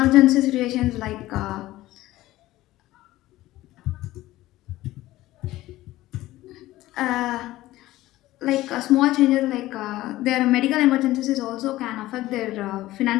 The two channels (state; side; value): quieter; right; 16.5 dB